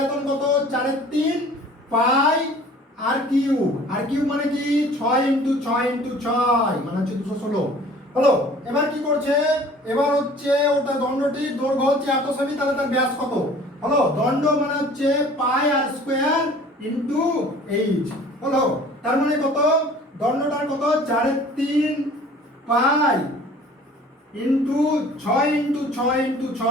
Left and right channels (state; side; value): normal; both; correlation 0.49